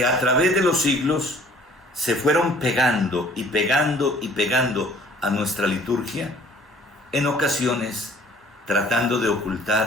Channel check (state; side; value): normal; both; correlation 0.54